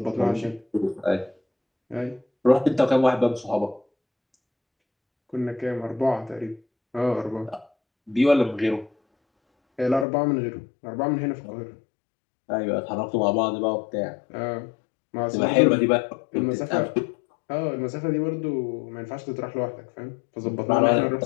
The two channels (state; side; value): drops out; right; at 10.1 s